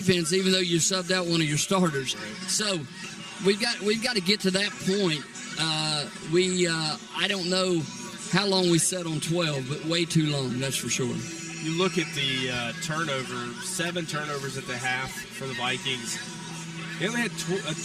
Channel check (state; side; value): identical; both; correlation 1.00